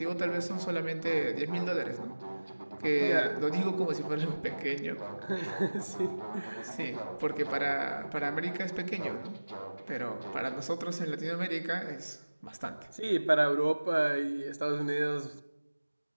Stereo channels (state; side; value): inverted; both; correlation -1.00